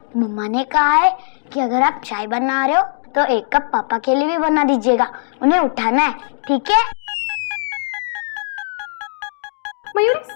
मम्मा ने कहा है कि अगर आप चाय बना रहे हो तो 1 कप पापा के लिए भी बना दीजिएगा, उन्हें उठाना है, ठीक है? मयूरी,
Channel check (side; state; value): right; silent; digital silence